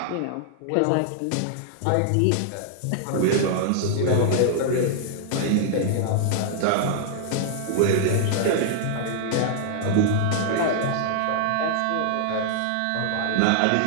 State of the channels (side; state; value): both; different; correlation -0.01